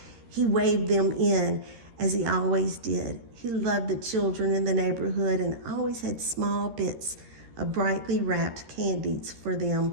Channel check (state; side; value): late; left; 13 ms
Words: He waved them in, as he always did. He loved the children in the neighborhood and always had small bits of brightly wrapped candies for